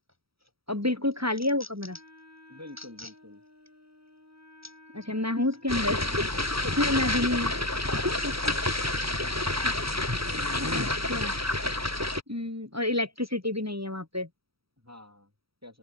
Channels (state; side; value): late; left; 0.76 ms